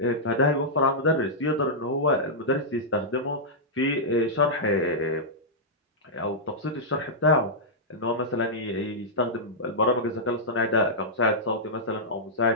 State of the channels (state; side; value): normal; both; correlation -0.10